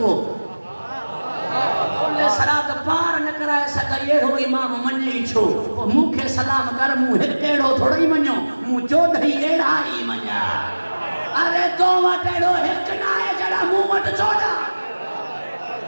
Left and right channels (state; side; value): inverted; both; correlation -1.00